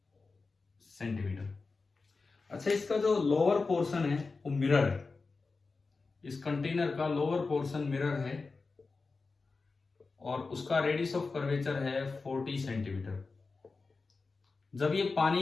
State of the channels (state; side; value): quieter; right; 4.1 dB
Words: सेंटीमीटर। अच्छा, इसका जो लोअर पोर्शन है वो मिरर है। इस कंटेनर का लोअर पोर्शन मिरर है और उसका रेडियस ऑफ कर्वेचर है 40 सेंटीमीटर। जब ये